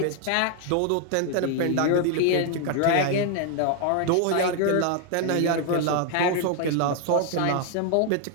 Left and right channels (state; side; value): different; both; correlation 0.01